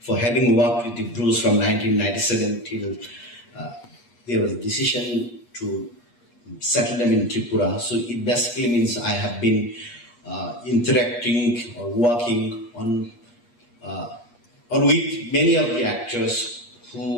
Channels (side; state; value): right; late; 8.4 ms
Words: for having worked with the Brus from 1997 till there was a decision to settle them in Tripura. So it basically means I have been interacting or working on or with many of the actors